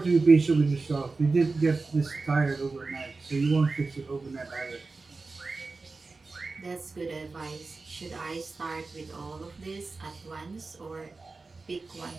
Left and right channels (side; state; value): left; quieter; 3.8 dB